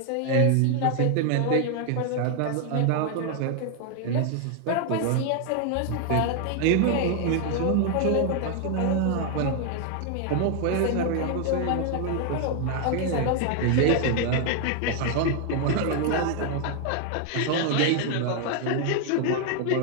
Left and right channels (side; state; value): both; different; correlation 0.00